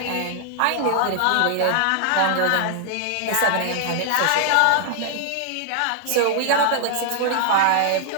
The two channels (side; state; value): both; different; correlation 0.00